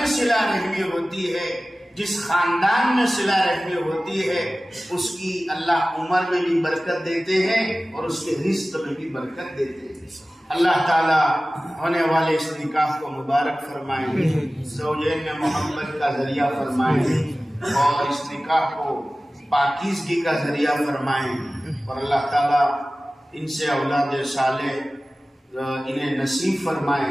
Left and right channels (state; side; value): normal; both; correlation 0.97